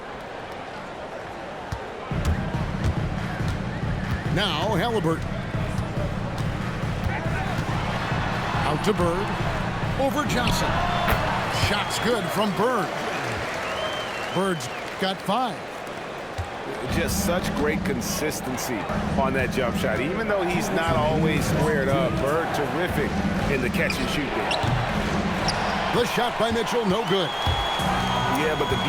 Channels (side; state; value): both; identical; correlation 1.00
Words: Now Halliburton. Out to Bird. Over Johnson. Shot's good from Bird. Bird's got 5. Just such great consistency on that jump shot. Even though he's not always squared up, Bird terrific in the catch and shoot game. The shot by Mitchell, no good. Yeah, but the